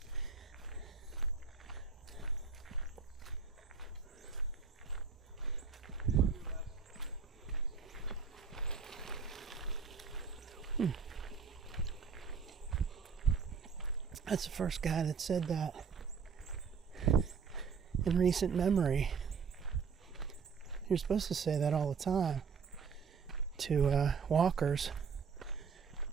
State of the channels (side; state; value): left; quieter; 5.9 dB